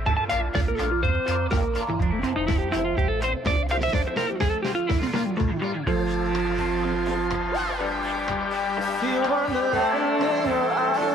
Feel wonderland in your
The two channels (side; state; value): both; normal; correlation 0.70